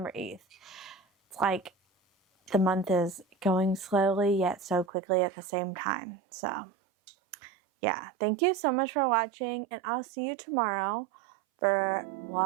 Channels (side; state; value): left; drops out; at 4.9 s